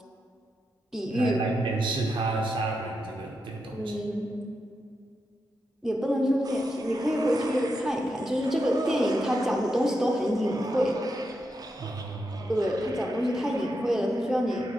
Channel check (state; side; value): normal; both; correlation 0.85